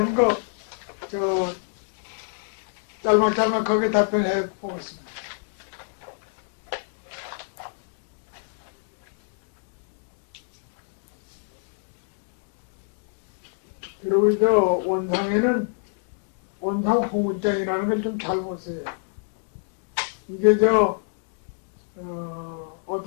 거 저 짤막짤막하게 답변해 보겠습니다. 그리고 저 원상에는 원상 홍문장이라는 걸 좀 잘 보세요. 이게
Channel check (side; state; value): right; silent; digital silence